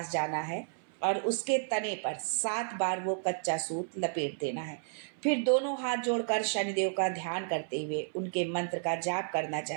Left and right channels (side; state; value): left; silent; 56 dB below the other